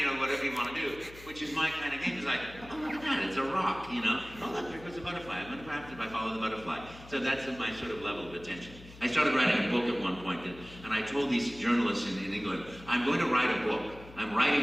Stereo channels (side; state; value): left; noise; hum, 18 dB below the sound